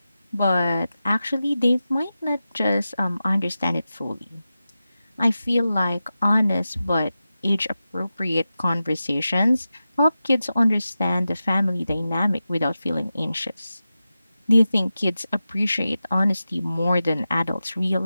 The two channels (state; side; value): inverted; both; correlation -0.93